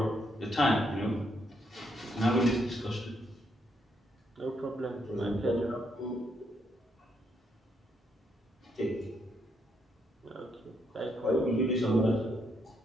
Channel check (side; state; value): both; normal; correlation 0.76